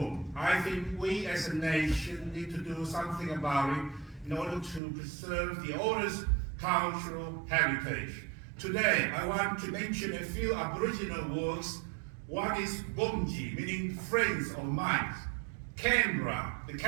I think we as a nation need to do something about it in order to preserve the oldest cultural heritage. Today, I want to mention a few Aboriginal words. One is Bumji, meaning friends or mates. Canberra, the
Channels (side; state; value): left; drops out; at 4.8 s